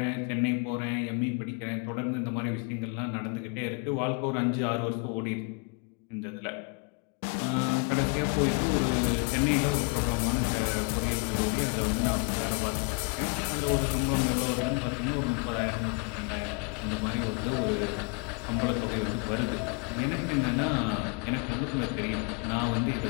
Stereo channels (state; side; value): quieter; right; 34.2 dB